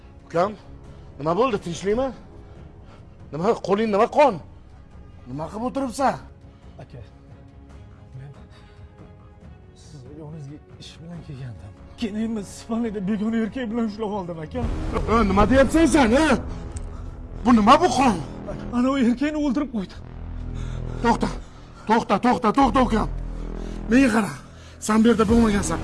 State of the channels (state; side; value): identical; both; correlation 1.00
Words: Ukam? Nima bo'ldi? Tinchlikmi? Nima qo'ling nima qon? Nima qilib o'tiribsan? Aka, men sizni yoningizga ish bilan kelgandim. Keyin men Ispaniyada begona erkak bilan ushlab oldim aka. Nima deyapsan sen, ha? Bu nima bu qon? Ana o erkakni o'ldirib qo'ydi. To'xta ukam. Menga qara. Sen bu yerda bo'lmagansan.